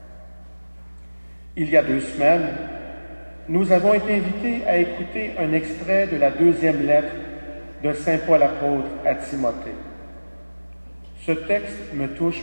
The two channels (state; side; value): inverted; both; correlation -1.00